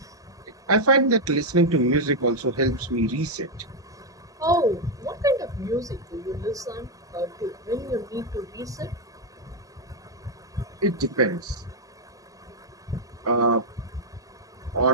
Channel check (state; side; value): normal; both; correlation 0.00